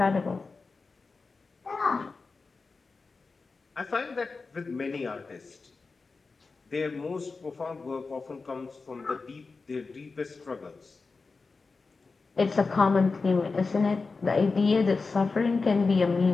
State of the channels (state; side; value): quieter; right; 4.2 dB